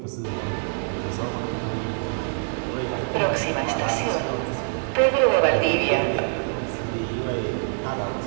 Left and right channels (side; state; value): left; silent; 62 dB below the other